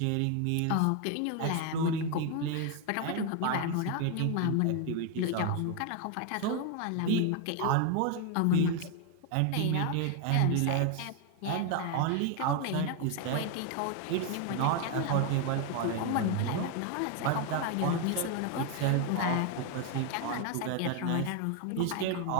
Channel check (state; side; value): different; both; correlation 0.01